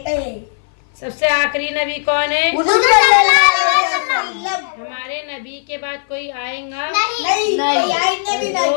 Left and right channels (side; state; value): right; silent; 58 dB below the other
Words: थे। सबसे आखिरी नबी कौन है? हुजूर सल्लल्लाहु अलैहि वसल्लम। हमारे नबी के बाद कोई आएगा? नहीं, कोई आएंगे भी